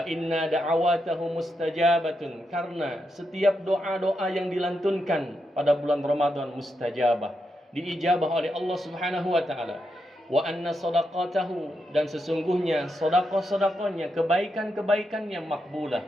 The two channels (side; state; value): both; normal; correlation 0.84